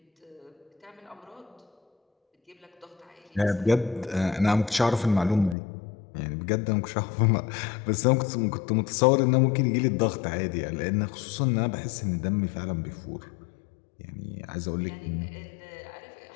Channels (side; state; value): right; drops out; at 5.6 s